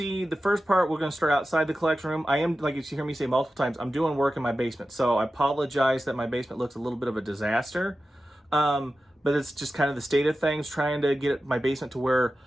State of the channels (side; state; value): both; normal; correlation 0.93